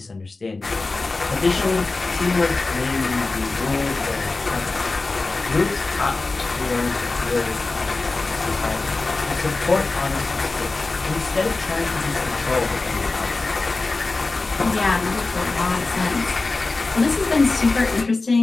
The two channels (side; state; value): right; quieter; 3.5 dB